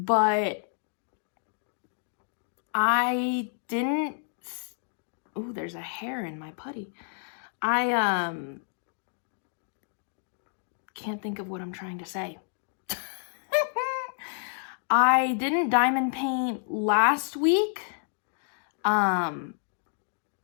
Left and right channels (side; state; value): right; silent; digital silence